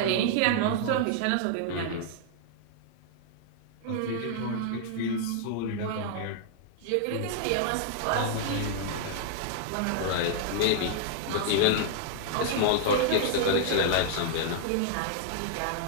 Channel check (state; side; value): different; both; correlation -0.01